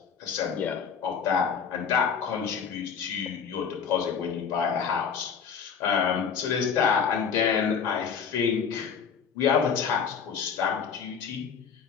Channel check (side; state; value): right; quieter; 6.7 dB